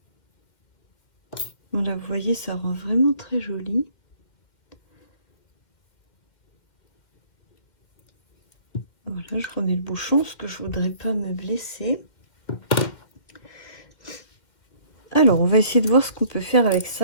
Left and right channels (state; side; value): late; right; 2.1 ms